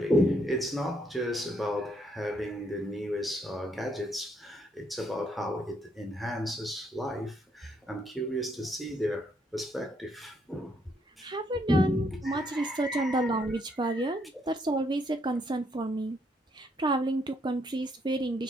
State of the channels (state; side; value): normal; both; correlation 0.72